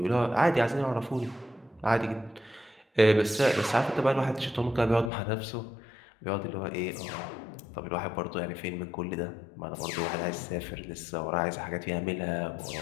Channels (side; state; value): right; drops out; at 5.1 s